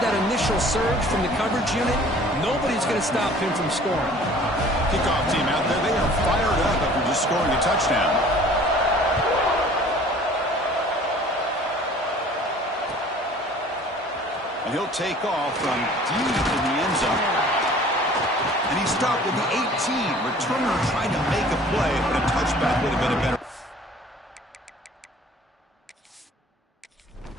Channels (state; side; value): normal; both; correlation 0.50